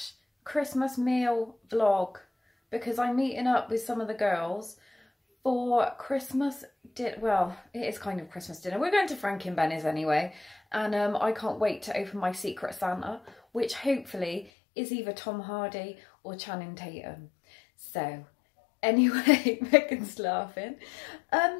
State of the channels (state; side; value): drops out; right; at 14.5 s